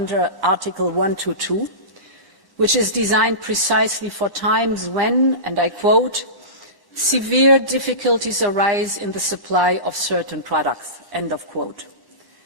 Article 122, which is designed precisely for times when, and I quote, severe difficulties arise in the supply of certain products, end of quote.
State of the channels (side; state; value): right; late; 1.1 ms